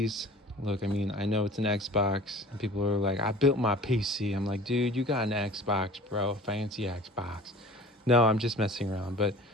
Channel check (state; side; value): normal; both; correlation 0.44